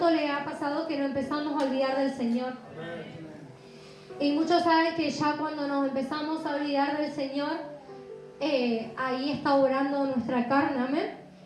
le ha pasado que nos empezamos a olvidar del Señor? Y muchos saben que ya cuando nos empezamos a olvidar del Señor, ahí está obrando nuestra carne, amén.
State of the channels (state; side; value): identical; both; correlation 1.00